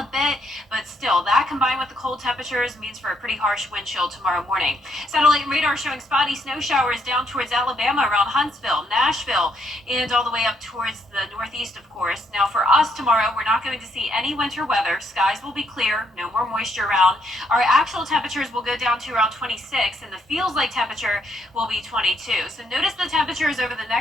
a bit, but still, that combined with the cold temperature temperatures means for a pretty harsh wind chill tomorrow morning. Satellite and radar showing spotty snow showers down towards Alabama around Huntsville, Nashville, and all the way up towards the northeast, of course. Now, for us tomorrow, we're not going to see any winter weather. Skies will be clear, no more moisture around. Our actual temperatures will go down to around 26, and the feels like temperature will be 22. So notice the temperatures over the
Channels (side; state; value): both; normal; correlation 0.73